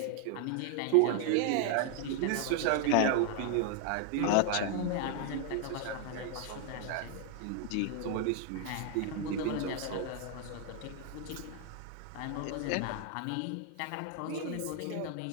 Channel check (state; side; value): different; both; correlation 0.00